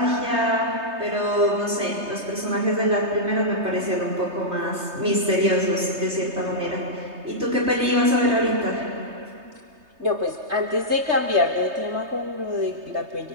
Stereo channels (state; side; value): late; left; 3.3 ms